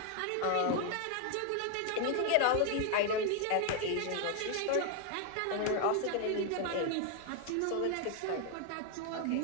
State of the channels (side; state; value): both; different; correlation 0.01